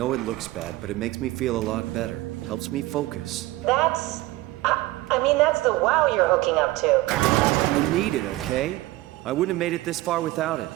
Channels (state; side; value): quieter; left; 18.5 dB